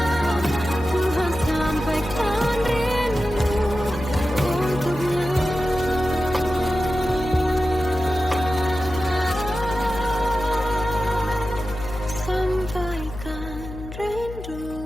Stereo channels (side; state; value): left; noise; hum, 12 dB below the sound